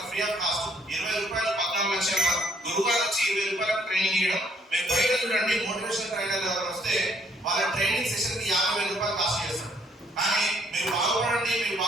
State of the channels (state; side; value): normal; both; correlation 0.66